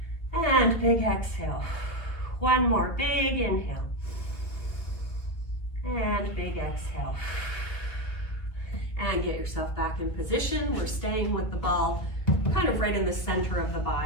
And big exhale. One more big inhale. And big exhale. And get yourself back in position. We're staying with the ball kind of right in the center of the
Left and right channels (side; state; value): right; late; 1.6 ms